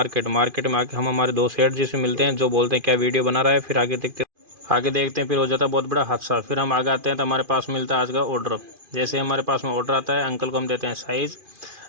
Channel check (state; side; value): late; left; 2.4 ms